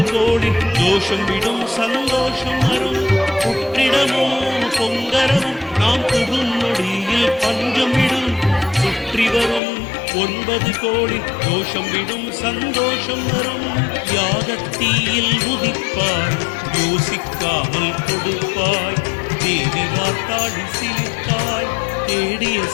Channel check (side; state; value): right; drops out; at 9.6 s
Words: கோடி தோஷம் விடும் சந்தோஷம் வரும் புற்றிடமும் பொங்கரவும் நாம் புகும் நொடியில் பஞ்சம் விடும் சுற்றி வரும் 9 கோடி தோஷம் விடும் சந்தோஷம் வரும் யாகத்தீயில் உதிப்பாய் யோசிக்காமல் கொடுப்பாய் தேவி வார்த்தாடி சிலித்தாய் தேடிய